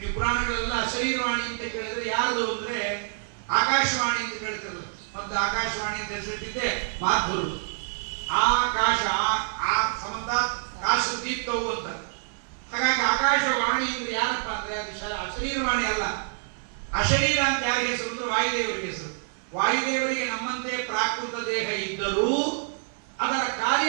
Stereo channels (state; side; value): silent; left; 57 dB below the other